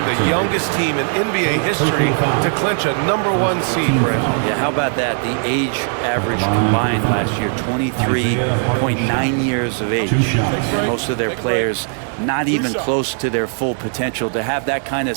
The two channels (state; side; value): silent; left; 57 dB below the other